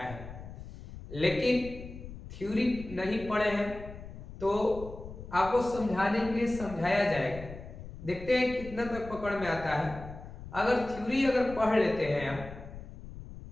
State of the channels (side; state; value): left; noise; rumble, 13 dB below the sound